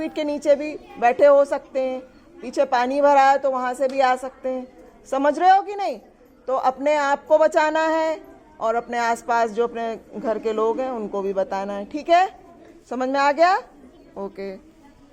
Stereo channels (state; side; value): identical; both; correlation 1.00